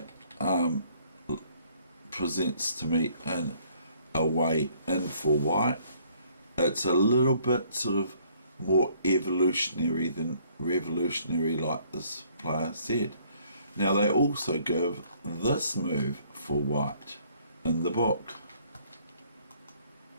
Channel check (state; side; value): inverted; both; correlation -0.62